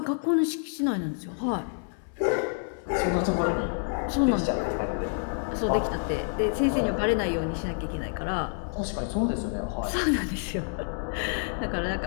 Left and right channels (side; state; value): right; silent; 59 dB below the other